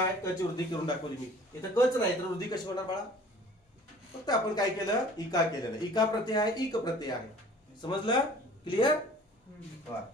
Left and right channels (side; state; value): both; normal; correlation 0.49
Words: क ची वृद्धी करून दाखवली मी. इथं कच नाही तर वृद्धी कशी होणार बाळा? फक्त आपण काय केलं? इका केलेलं. इका प्रत्यय आहे, इक प्रत्यय आहे. समजलं? क्लिअर?